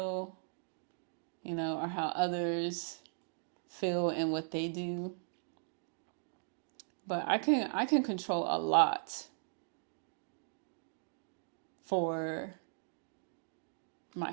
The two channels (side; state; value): left; silent; digital silence